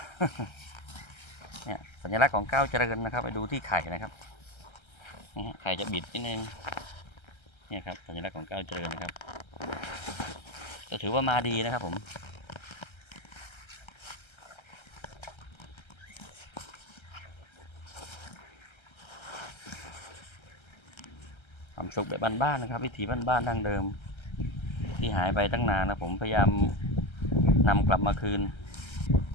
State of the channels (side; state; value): right; late; 1.3 ms